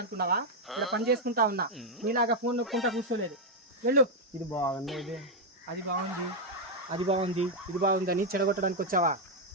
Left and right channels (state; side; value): normal; both; correlation 0.00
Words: ఇలా పని చేసుకుంటా ఉన్నా, నీలాగా ఫోన్ నొక్కుంటా కూర్చోలేదు. వెళ్ళు. ఇది బాగుంది, ఇది అది బాగుంది, అది బాగుంది, ఇది బాగుందని చెడగొట్టడానికి వచ్చావా?